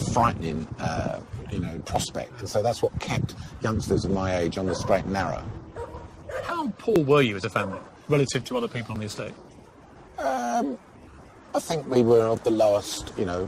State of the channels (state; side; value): identical; both; correlation 1.00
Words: prospect. And so that's what kept youngsters of my age on the straight and narrow. How poor were you as a family relative to other people on the estate? I think we were of the lowest,